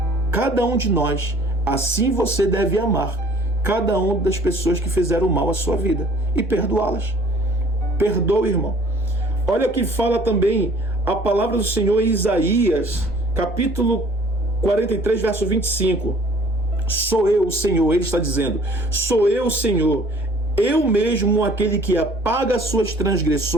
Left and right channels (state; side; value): normal; both; correlation 0.54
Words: cada um de nós, Assim você deve amar cada uma das pessoas que fizeram mal à sua vida e perdoá-las. Perdoe, irmão. Olha o que fala também a palavra do Senhor em Isaías, capítulo 43, verso 25. Sou eu, o Senhor, ele está dizendo, sou eu, o Senhor, eu mesmo aquele que apaga as suas